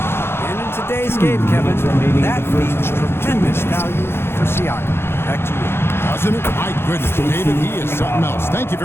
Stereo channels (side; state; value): right; late; 0.11 ms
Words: And in today's game, Kevin, that means tremendous value for Siakam. Back to you. Doesn't it? My goodness, David, he is something else. Thank you